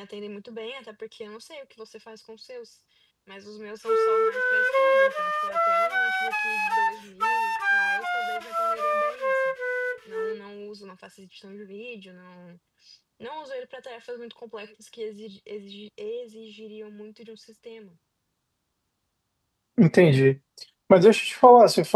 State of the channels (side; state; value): both; identical; correlation 1.00